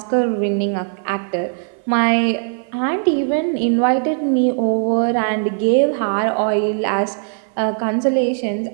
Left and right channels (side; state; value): left; silent; 58 dB below the other